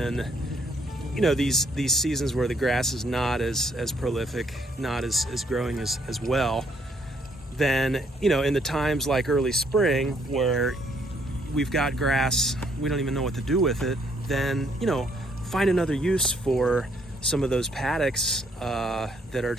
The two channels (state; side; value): normal; both; correlation 0.69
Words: these seasons where the grass is not as prolific, not as growing as well, then in the times like early spring where we've got grass, we don't even know what to do with it, then find another use for some of those paddocks that are